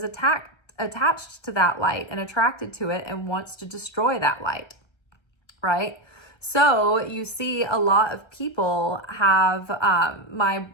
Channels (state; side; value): late; right; 1.3 ms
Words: attached to that light and attracted to it and wants to destroy that light. Right? So you see a lot of people have,